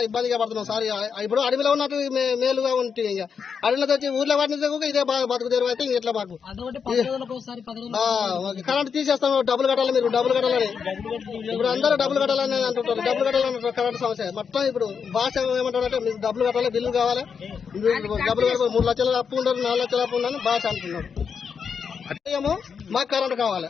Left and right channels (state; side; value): quieter; right; 6.4 dB